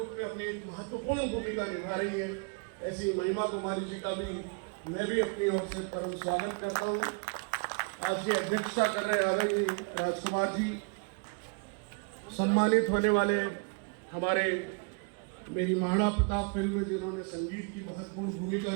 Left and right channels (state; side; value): quieter; left; 36.5 dB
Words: में अपनी महत्वपूर्ण भूमिका निभा रही है, ऐसी महिमा कुमारी जी का भी मैं भी अपनी ओर से परम स्वागत करता हूं। आज की अध्यक्षता कर रहे आदरणीय राजकुमार जी, सम्मानित होने वाले हमारे मेरी महाराणा प्रताप फिल्म में जिन्होंने संगीत की महत्वपूर्ण भूमिका